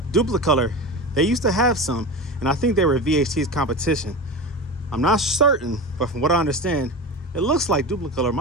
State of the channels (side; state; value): both; normal; correlation 0.26